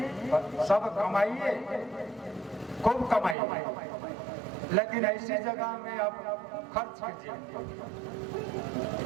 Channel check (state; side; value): drops out; left; at 3.4 s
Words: सब कमाइए, खूब कमाइए, लेकिन ऐसी जगह में आप खर्च कीजिए